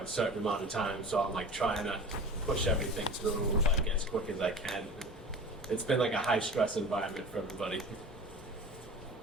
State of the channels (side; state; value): both; normal; correlation 0.36